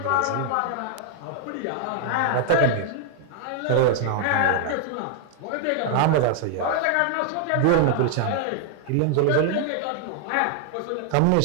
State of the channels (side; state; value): both; different; correlation 0.00